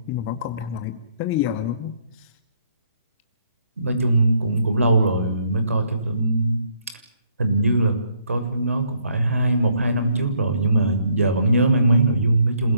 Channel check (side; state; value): both; inverted; correlation -0.69